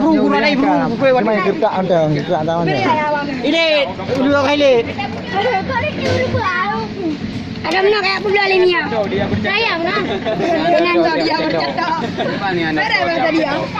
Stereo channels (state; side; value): identical; both; correlation 1.00